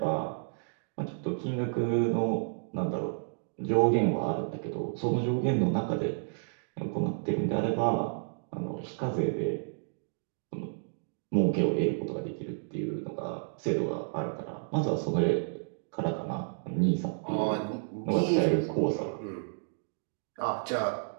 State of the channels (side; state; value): left; silent; digital silence